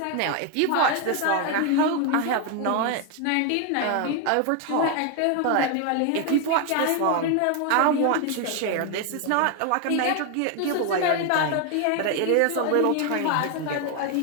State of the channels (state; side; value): different; both; correlation 0.01